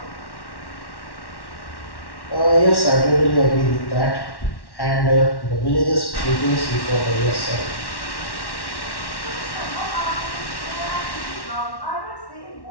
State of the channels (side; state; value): right; late; 1.1 ms